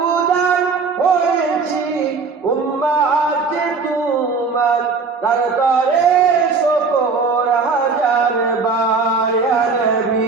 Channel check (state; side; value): quieter; left; 4.7 dB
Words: হয়েছি উম্মত তোমার দরবারে শুকর হাজার বার ইয়া